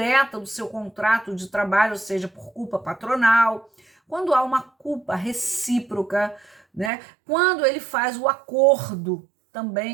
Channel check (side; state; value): left; drops out; at 6.9 s